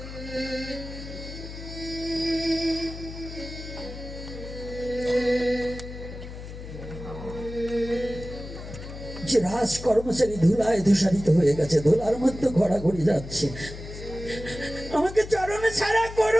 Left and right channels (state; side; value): noise; left; hum, 11 dB below the sound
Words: যে রাজ কর্মচারী ধুলায় ধূসারিত হয়ে গেছে, ধুলার মধ্যে ঘোরাঘুরি যাচ্ছে, আমাকে চরণে ছাড়া